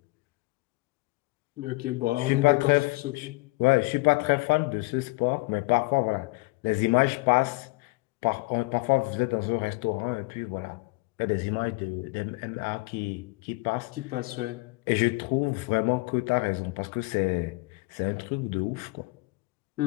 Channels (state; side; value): quieter; right; 24.5 dB